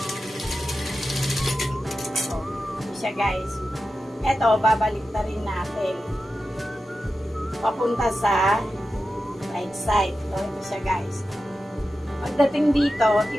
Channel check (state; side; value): normal; both; correlation 0.92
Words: Guys, eto babalik na rin natin papunta sa right side. Ito siya guys. Pagdating dito,